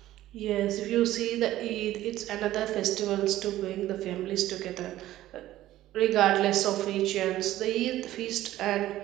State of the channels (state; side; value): quieter; left; 14.5 dB